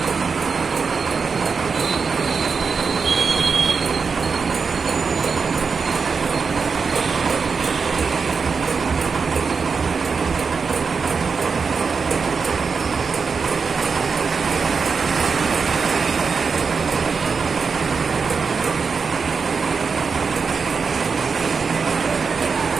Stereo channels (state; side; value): quieter; left; 5.3 dB